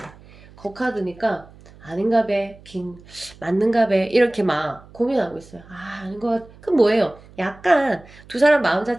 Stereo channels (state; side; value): noise; right; hum, 23 dB below the sound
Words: 그 카드니까 아닌가 배 맞는가 배 이렇게 막 고민하고 있어요. 아닌 것 같. 그럼 뭐예요? 약간 두 사람 마음